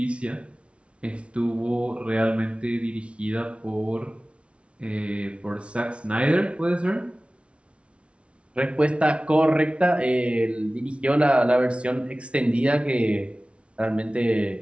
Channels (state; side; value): late; left; 0.060 ms